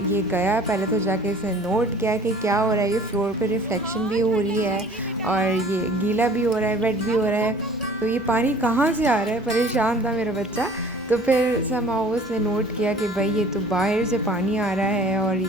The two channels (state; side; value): normal; both; correlation 0.49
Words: ये गया पहले तो जाके इसने नोट किया कि क्या हो रहा है। ये फ्लोर पे रिफ्लेक्शन भी हो रही है और ये गीला भी हो रहा है, वेट भी हो रहा है। तो ये पानी कहाँ से आ रहा है, परेशान था मेरा बच्चा। तो फिर समहाउ उसने नोट किया कि भाई ये तो बाहर से पानी आ रहा है और ये